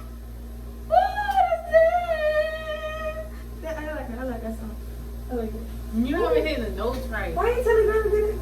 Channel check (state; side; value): identical; both; correlation 1.00